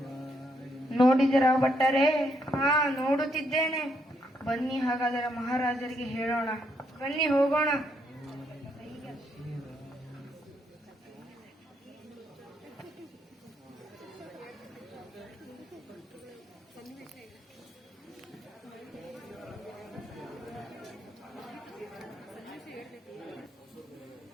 ನೋಡಿದರ ಭಟ್ಟರೇ? ಹಾ, ನೋಡುತ್ತಿದ್ದೇನೆ. ಬನ್ನಿ, ಹಾಗಾದರೆ ಮಹಾರಾಜರಿಗೆ ಹೇಳೋಣ. ಬನ್ನಿ, ಹೋಗೋಣ.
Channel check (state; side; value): normal; both; correlation 0.75